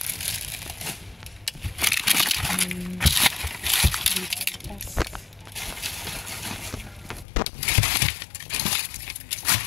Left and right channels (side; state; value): right; drops out; at 7.2 s